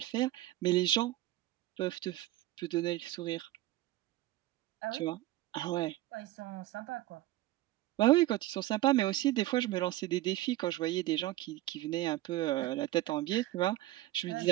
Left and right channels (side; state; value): left; quieter; 15.9 dB